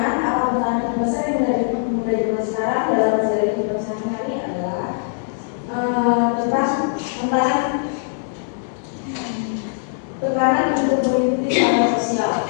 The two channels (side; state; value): right; silent; digital silence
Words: apa pesan terbesar yang dari pemuda zaman sekarang dalam menjalani hidup sehari-hari adalah tekanan untuk mengikuti standar sosial.